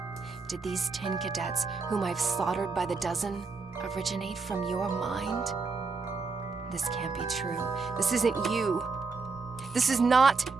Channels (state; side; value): quieter; left; 4.4 dB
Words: did these tin cadets, whom I've slaughtered by the dozen, originate from your mind? This can't be true. This isn't you. This is not